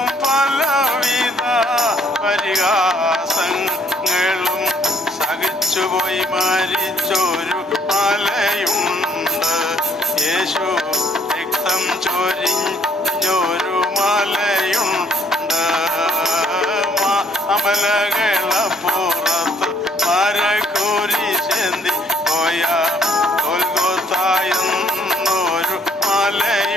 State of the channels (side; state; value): both; normal; correlation 0.63